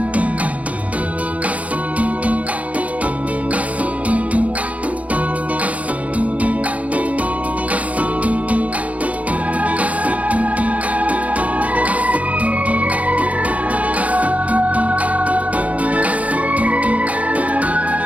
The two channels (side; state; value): left; late; 0.068 ms